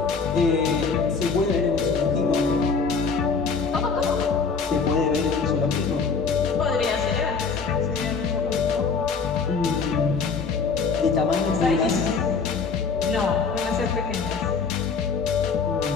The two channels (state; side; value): quieter; right; 5.1 dB